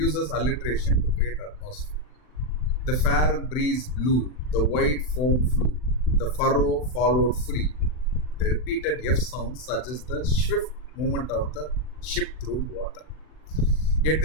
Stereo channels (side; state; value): right; late; 39 ms